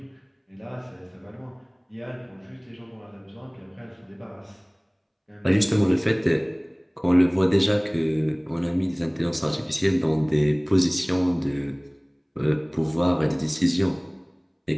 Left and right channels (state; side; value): identical; both; correlation 1.00